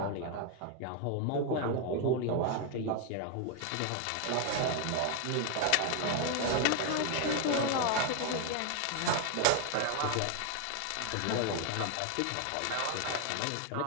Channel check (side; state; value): both; different; correlation 0.01